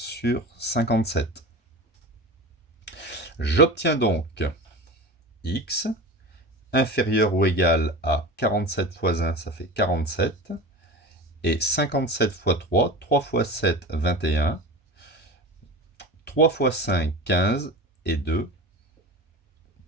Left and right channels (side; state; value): both; normal; correlation 0.30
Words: 57. J'obtiens donc x inférieur ou égal à 47 fois 1, ça fait 47. Et 57 fois 3, 3 fois 7, 21. 3 fois 5, 15. Et 2,